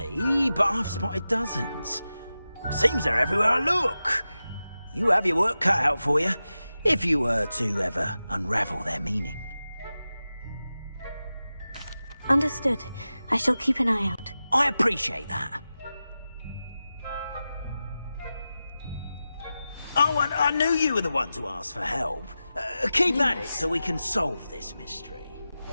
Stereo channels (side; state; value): both; inverted; correlation -0.93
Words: but I've spotted dozens. Seems they're everywhere I look. You have your work cut out for you, if you were to ever unravel their meaning. Understood. I shall keep an eye out. I appreciate that. Oh, and I knew you were the one to ask for help. Keep at it so we can solve this mystery.